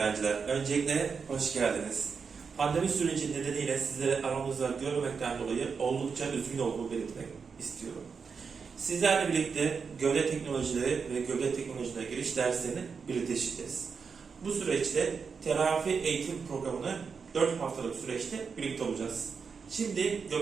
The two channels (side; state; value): left; quieter; 5.6 dB